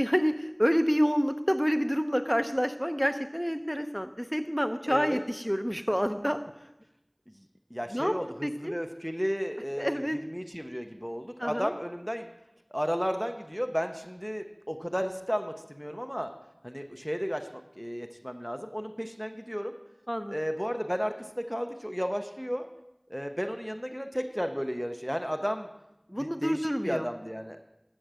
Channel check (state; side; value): identical; both; correlation 1.00